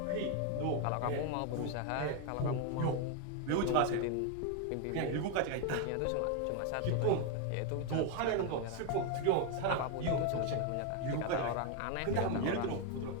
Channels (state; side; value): different; both; correlation 0.01